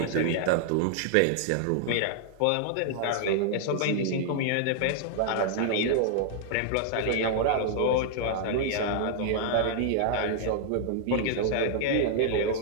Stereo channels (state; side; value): different; both; correlation 0.00